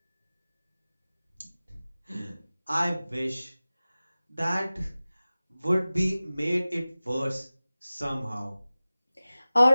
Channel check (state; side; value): inverted; both; correlation -0.97